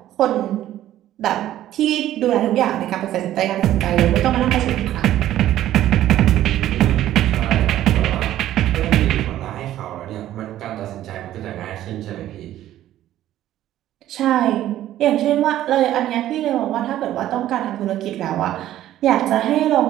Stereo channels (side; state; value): left; quieter; 13.0 dB